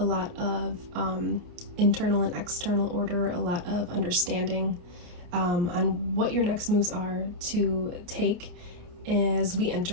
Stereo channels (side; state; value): left; late; 28 ms